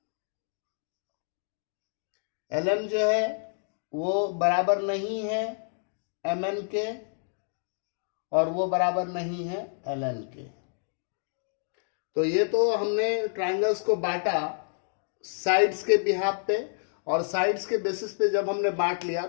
LM जो है वो बराबर नहीं है MN के, और वो बराबर नहीं है LN के। तो ये तो हमने ट्रायंगल्स को बांटा साइड्स के बिहाफ पे, और साइड्स के बेसिस पे जब हमने बांट लिया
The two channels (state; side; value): silent; right; digital silence